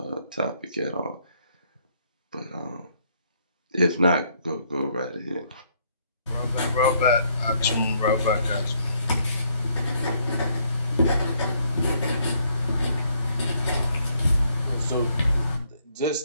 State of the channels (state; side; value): inverted; both; correlation -0.69